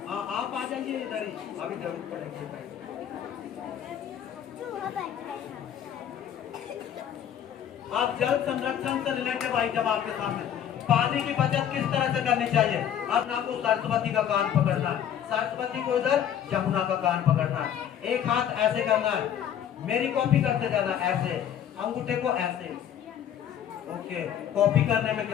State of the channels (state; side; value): quieter; right; 9.6 dB